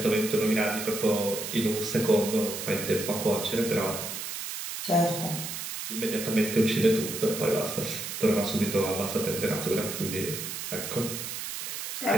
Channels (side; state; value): right; noise; hiss, 6 dB below the sound